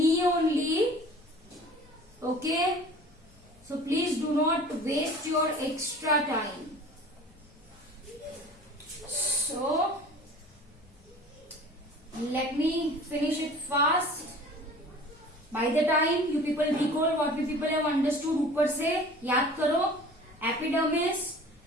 only. Okay. So please do not waste your extra time. So let me finish it fast. By the time you people recall what we people have understood, ऊपर से याद करो. Epidermis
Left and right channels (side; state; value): left; noise; hum, 30 dB below the sound